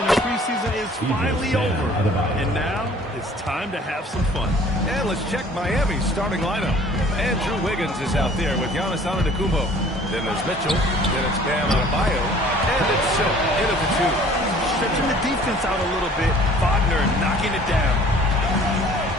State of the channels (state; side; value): normal; both; correlation 0.52